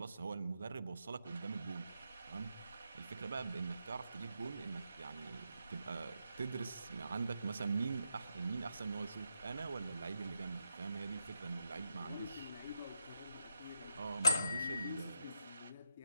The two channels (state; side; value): inverted; both; correlation -0.80